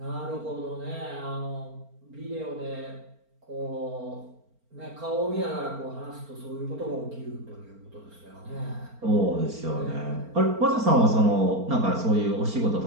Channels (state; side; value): late; left; 4.4 ms